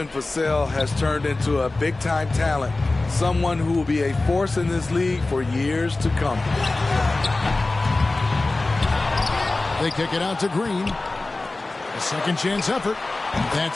Vassell has turned into a big-time talent. Someone who will be a force in this league for years to come. They kick it out to Green. A second chance effort.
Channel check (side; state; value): right; quieter; 3.2 dB